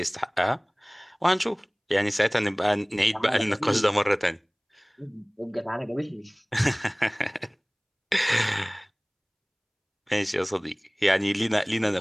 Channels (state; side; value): identical; both; correlation 1.00